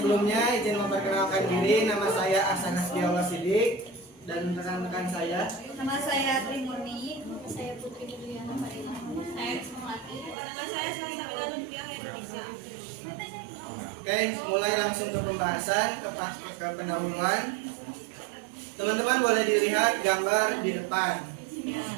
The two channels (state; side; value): drops out; left; at 10.4 s